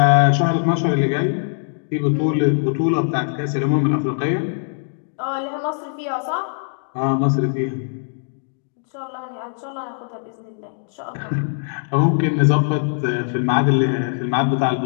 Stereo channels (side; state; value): right; silent; digital silence